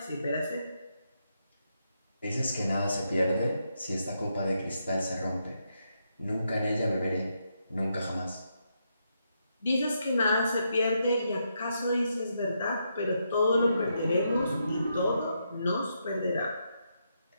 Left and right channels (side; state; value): both; inverted; correlation -0.80